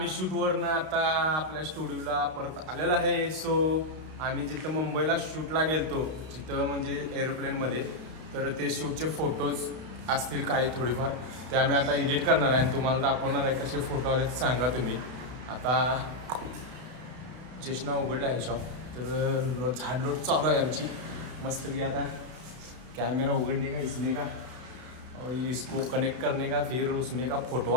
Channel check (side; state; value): left; late; 32 ms